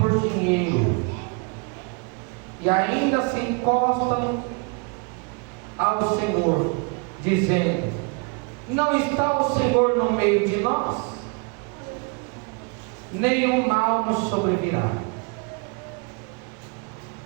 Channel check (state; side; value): quieter; left; 33.8 dB